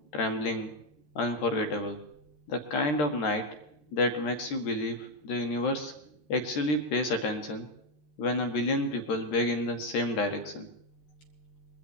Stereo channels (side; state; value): right; late; 13 ms